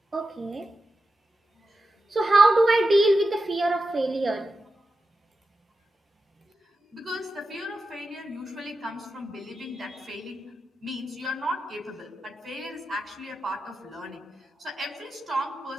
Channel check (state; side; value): normal; both; correlation 0.90